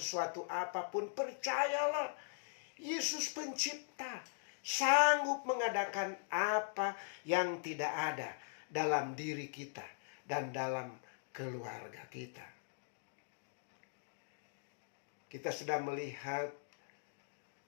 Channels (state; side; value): silent; right; digital silence